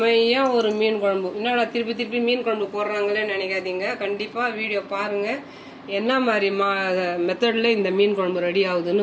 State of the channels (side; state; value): both; identical; correlation 1.00